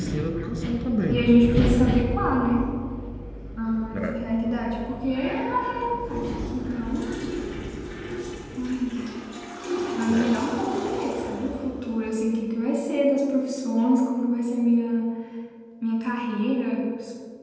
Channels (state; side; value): identical; both; correlation 1.00